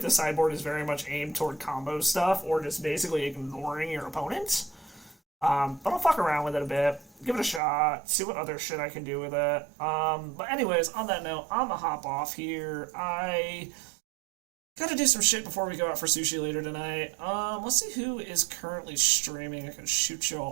sideboard is very much aimed toward combo stuff, or just basically ignoring your opponent. But I'll fuck around with it a bit, give it a shot, see what other shit I can do with it. But anyways, on that note, I'm gonna hop off here. I gotta do some shit before we go out for sushi later tonight. Let's see who is currently streaming I can shoot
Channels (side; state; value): left; drops out; at 7.6 s